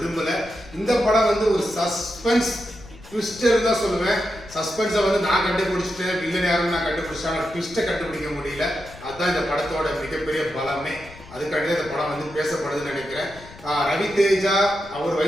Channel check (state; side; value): noise; left; rumble, 19 dB below the sound